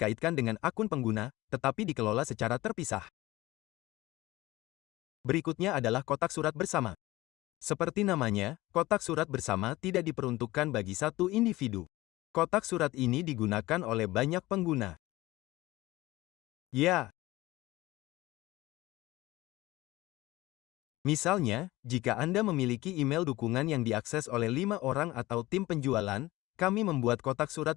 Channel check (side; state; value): right; quieter; 18.6 dB